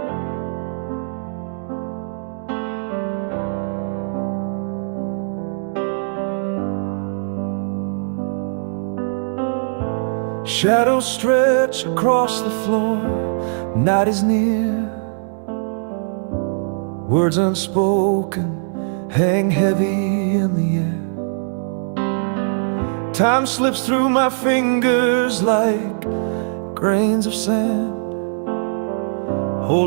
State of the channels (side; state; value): left; silent; digital silence